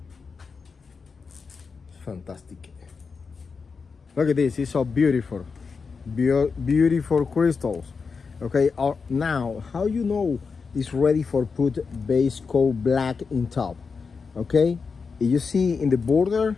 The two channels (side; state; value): right; quieter; 5.1 dB